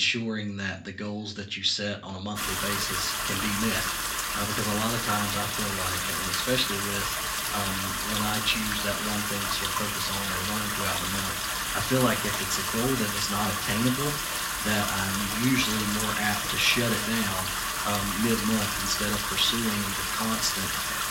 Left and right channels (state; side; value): identical; both; correlation 1.00